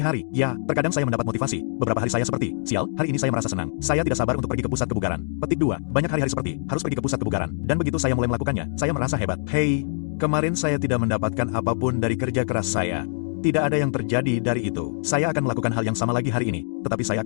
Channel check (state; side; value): silent; right; digital silence